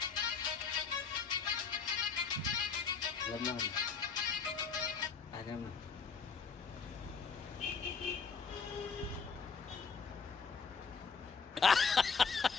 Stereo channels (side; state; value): right; quieter; 5.5 dB